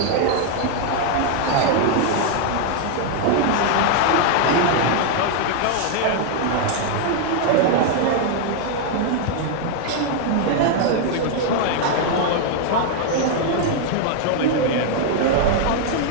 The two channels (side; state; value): both; different; correlation 0.00